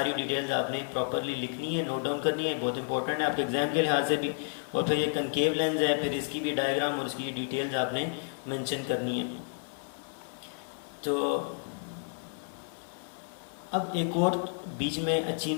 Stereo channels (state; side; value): silent; right; digital silence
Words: डिटेल्स आपने प्रॉपरली लिखनी है, नोट डाउन करनी है, बहुत इंपॉर्टेंट है आपके एग्जाम के लिहाज से भी। और फिर ये कनकेव लेंस है, फिर इसकी भी डायग्राम और इसकी डिटेल्स आपने मेंशन करनी है। तो अब एक और बीच में अच्छी